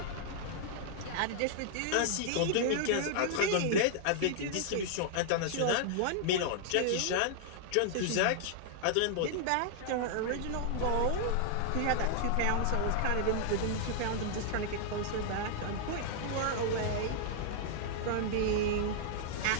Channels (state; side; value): different; both; correlation -0.01